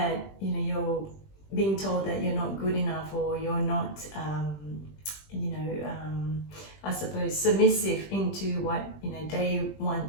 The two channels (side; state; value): right; late; 20 ms